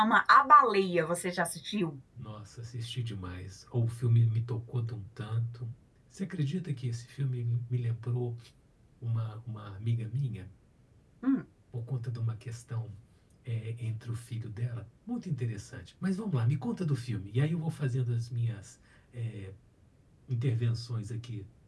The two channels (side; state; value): both; identical; correlation 1.00